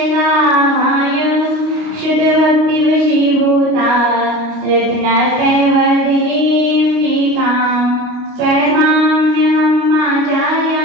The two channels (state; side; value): late; left; 29 ms